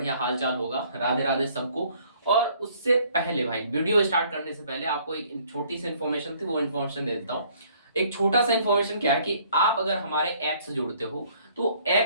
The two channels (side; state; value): both; inverted; correlation -0.60